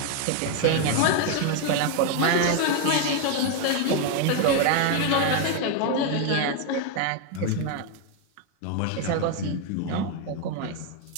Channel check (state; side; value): different; both; correlation 0.01